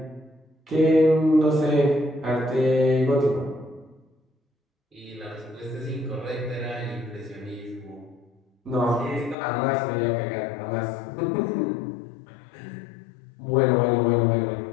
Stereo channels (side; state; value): right; drops out; at 9.3 s